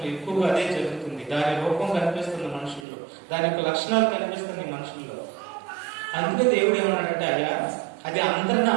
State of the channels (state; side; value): drops out; left; at 2.9 s